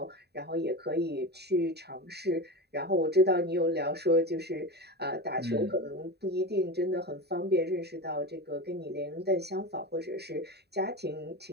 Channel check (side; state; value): left; late; 0.48 ms